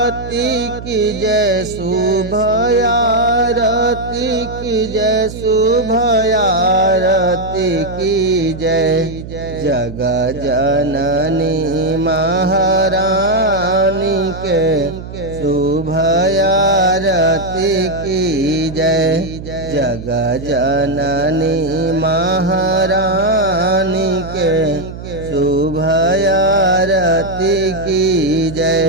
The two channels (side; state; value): right; noise; hum, 11 dB below the sound